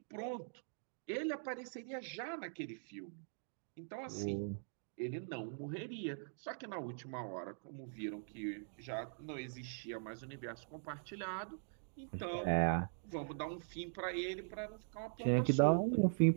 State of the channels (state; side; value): silent; left; digital silence